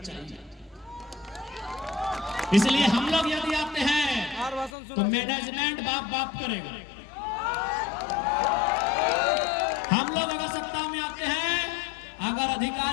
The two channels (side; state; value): right; drops out; at 4.7 s